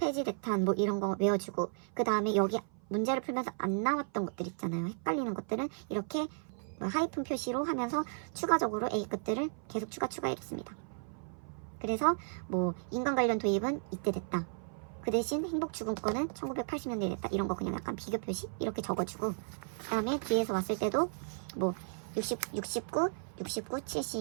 뭐 이런 거 외워주고 그 다음에 여기 문제를 풀면서 안 나왔던 것들 있잖아요. 헷갈리는 것들은 이렇게 뭐 하이픈 표시로 하면서 추가적으로 A급들을 계속 추가해줬습니다. 그래서 뭐 인간 관련 도입은 이때 됐다. 그 대신 행복추gun권은 1980년대에 됐다. 이런 거 그냥 약간 비교 표시 이렇게 적어주고 그 다음에 뒤에서 왔을 때도 뭐 69,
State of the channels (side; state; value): left; silent; 55 dB below the other